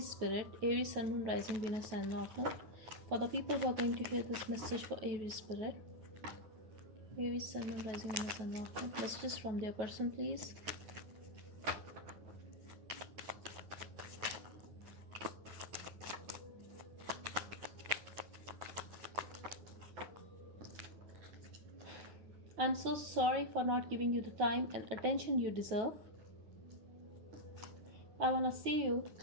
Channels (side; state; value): left; late; 9.3 ms